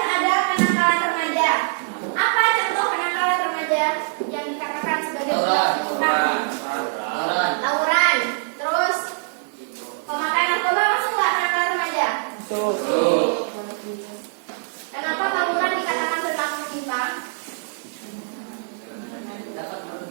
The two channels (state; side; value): silent; left; digital silence